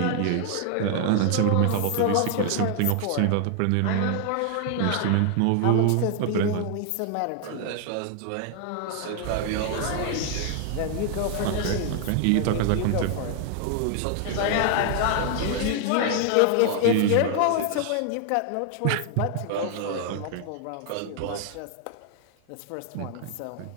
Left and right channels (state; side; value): different; both; correlation 0.00